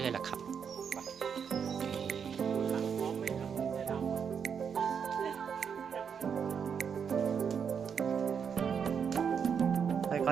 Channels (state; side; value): quieter; left; 7.0 dB